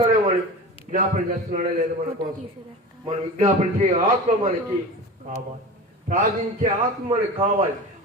అని విజ్ఞాపన చేస్తున్నాడే లేదు మన కోసం. మనం విజ్ఞాపన చేయ ఆత్మ మనకి కావాలి, ప్రార్థించే ఆత్మ మనకు కావాలి,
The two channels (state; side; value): normal; both; correlation 0.32